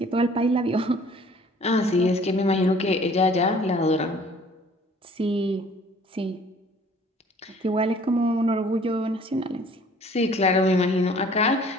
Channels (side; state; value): both; normal; correlation 0.53